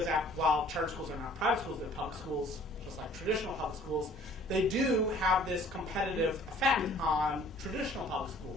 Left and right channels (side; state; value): both; normal; correlation 0.54